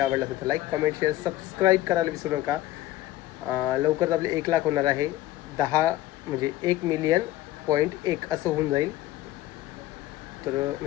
आवडला असेल तर लाईक, कमेंट, शेअर, सबस्क्राईब करायला विसरू नका. लवकरच आपले 1 लाख होणार आहे. 10 म्हणजे 1,000,000.1 असं होऊन जाईल. तर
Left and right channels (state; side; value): quieter; right; 15.4 dB